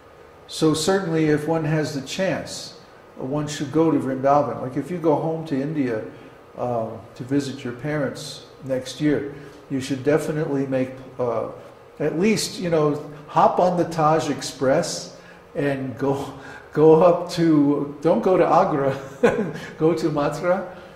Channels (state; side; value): identical; both; correlation 1.00